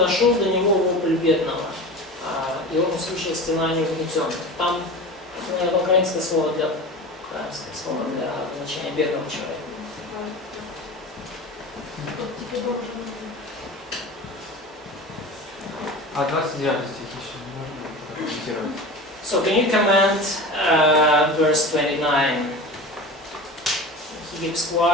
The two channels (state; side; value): normal; both; correlation 0.32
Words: до него вопль бедного. И он услышал стенание угнетенных. Там, наверное, украинское слово для значения бедного человека. А 29 стих еще можно прокомментировать? So can you comment verse 29? He keeps